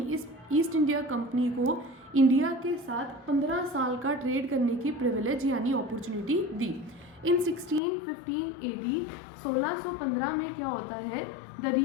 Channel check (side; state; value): right; drops out; at 7.8 s